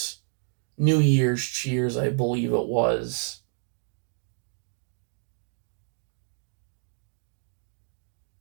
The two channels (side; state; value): left; silent; 58 dB below the other